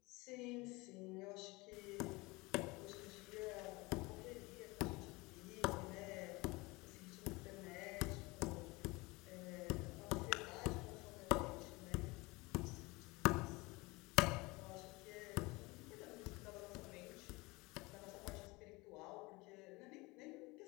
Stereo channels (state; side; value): quieter; right; 23.8 dB